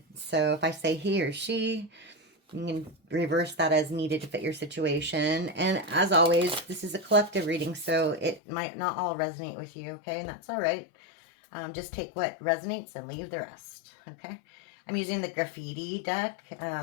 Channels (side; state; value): right; drops out; at 8.4 s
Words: So if I say he or she, you can reverse that as needed to fit your situation. And as always, this is a collective reading, so it might not all resonate with you, okay? And that's all right. Just take what resonates and leave the rest, okay? I'm using the graffiti deck.